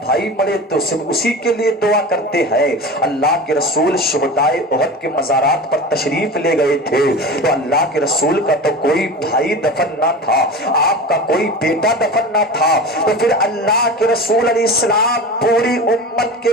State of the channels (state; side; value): normal; both; correlation 0.31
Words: بھائی مرے تو صرف اسی کے لیے دعا کرتے ہیں۔ اللہ کے رسول شہدائے احد کے مزارات پر تشریف لے گئے تھے تو اللہ کے رسول کا تو کوئی بھائی دفن نہ تھا، آپ کا کوئی بیٹا دفن نہ تھا، تو پھر اللہ کے رسول علیہ السلام پوری امت